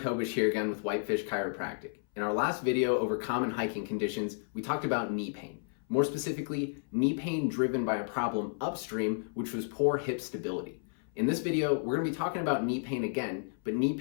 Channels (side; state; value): right; silent; 56 dB below the other